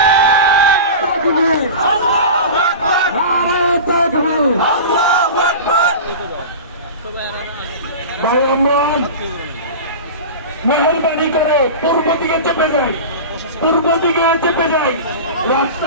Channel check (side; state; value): both; inverted; correlation -0.30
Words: ভাই আমরা মেহরবানি করে পূর্ব দিকে চেপে যাই, পূর্ব দিকে চেপে যাই।